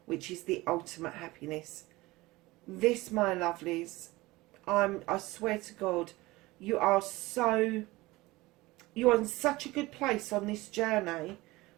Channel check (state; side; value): quieter; left; 20.3 dB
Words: which is the ultimate happiness. This, my lovelies, I swear to God, you are in such a good place on this journey.